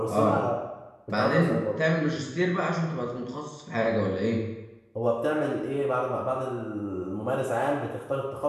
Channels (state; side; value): identical; both; correlation 1.00